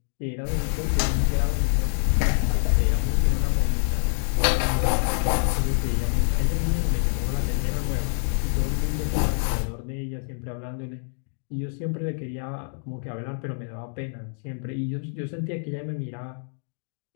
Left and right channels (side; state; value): right; silent; digital silence